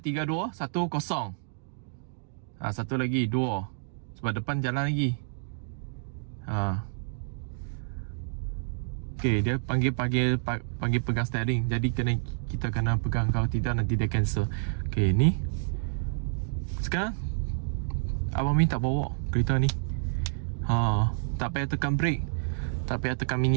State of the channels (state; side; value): silent; left; digital silence